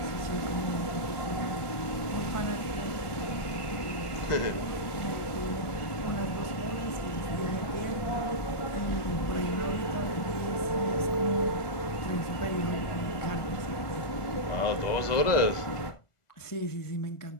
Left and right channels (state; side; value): late; right; 1.4 ms